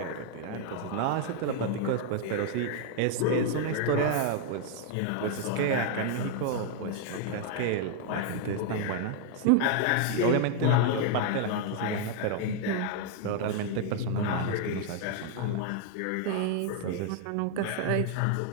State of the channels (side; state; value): both; different; correlation 0.00